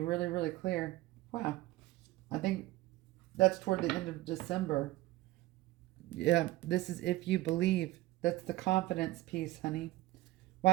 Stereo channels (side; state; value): left; quieter; 17.8 dB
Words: really clear. Wow. I think that's toward the end of December. Yeah, this is if you believe. That's the confidence piece, honey.